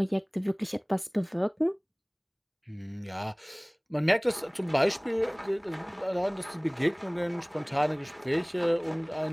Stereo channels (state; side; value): identical; both; correlation 1.00